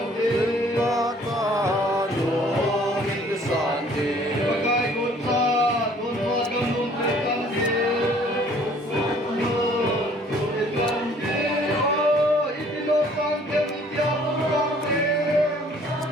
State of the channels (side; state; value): both; normal; correlation 0.57